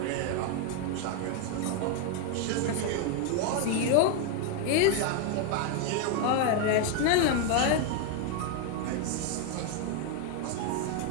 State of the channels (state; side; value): different; both; correlation 0.01